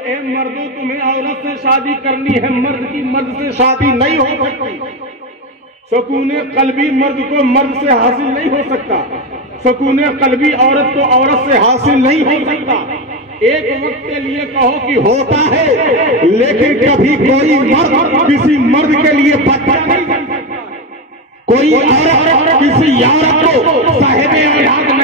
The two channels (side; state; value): both; normal; correlation 0.14